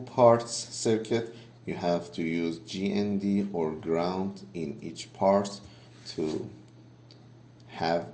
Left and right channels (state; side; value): identical; both; correlation 1.00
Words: parts circuit, you have to use GND or ground in each part to have